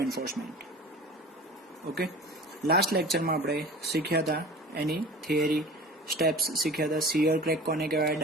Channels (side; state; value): both; normal; correlation 0.39